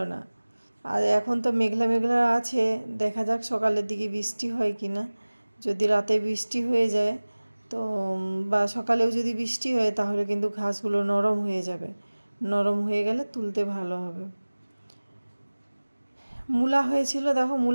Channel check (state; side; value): inverted; both; correlation -1.00